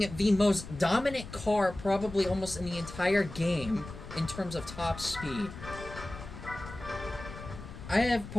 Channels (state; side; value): noise; left; rumble, 12 dB below the sound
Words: the most dominant car probably almost in the entire game in terms of top speed. I have